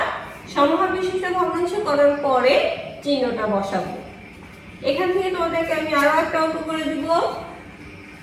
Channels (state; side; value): identical; both; correlation 1.00